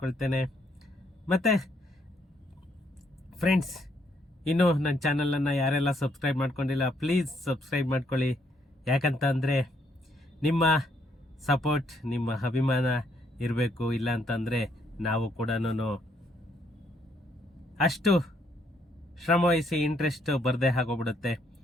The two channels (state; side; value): normal; both; correlation 0.71